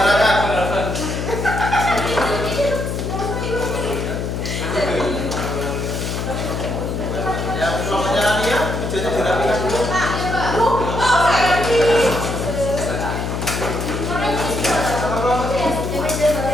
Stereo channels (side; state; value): left; noise; hum, 3 dB below the sound